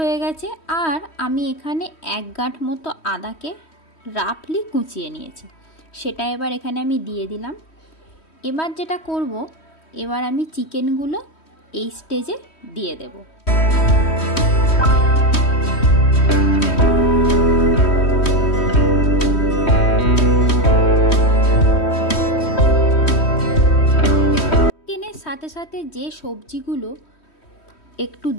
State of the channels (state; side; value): late; right; 3.1 ms